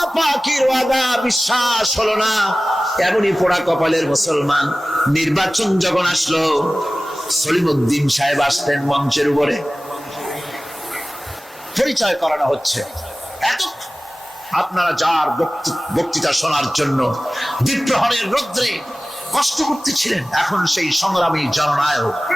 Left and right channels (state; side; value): normal; both; correlation 0.97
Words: পাকের ওয়াদা বিশ্বাস হলো না, এমনই পোড়া কপালের মুসলমান। নির্বাচন যখন আসলো, সলিমউদ্দিন সাহেব আসতেন মঞ্চের উপরে, পরিচয় করানো হচ্ছে। এত আপনারা যার বক্তৃতা শোনার জন্য বিপ্রহরের রৌদ্রে কষ্ট করতেছিলেন, এখন সেই সংগ্রামী জননায়ক